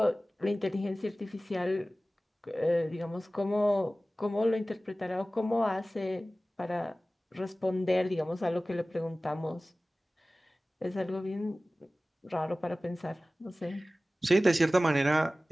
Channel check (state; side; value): normal; both; correlation 0.97